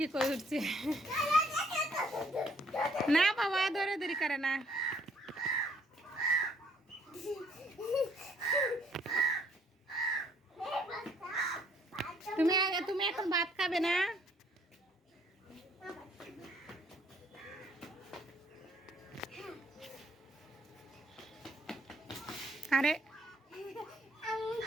কই উঠছে। না বাবা দৌড়াদৌড়ি করে না। তুমি এখন ভাত খাবে না? আরে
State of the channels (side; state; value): both; normal; correlation 0.64